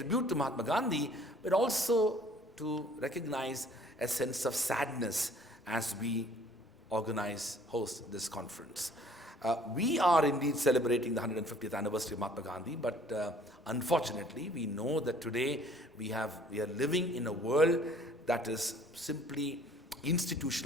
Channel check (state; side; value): normal; both; correlation 0.56